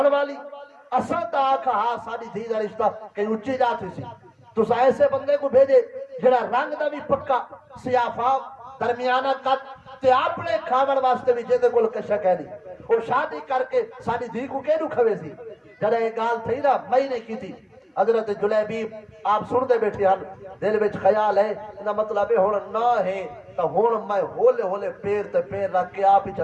والی اساں تا آکھا ہاں ساڈی دھی دا رشتہ کہیں اچھی جاتی سی تساں ایسے بندے کو بھیجے جڑا رنگ دا بھی پکا سیاہ فاق درمیانہ قد تے اپنے کھاون واسطے بھی جے کول کشا کہنی او شادی کر کے ساڈی دھی کو کیڑو کھوے سی جڑا یہ گال تھی نا میں نے کی تھی حضرت جلیبیب آپ سن دے بیٹھے ہن دل وچ خیال ہے انہا مطلب ہن نہ ہے تو ہن میں ہولے ہولے پیر تے پیر رکھ کے آپ ہی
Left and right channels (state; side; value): identical; both; correlation 1.00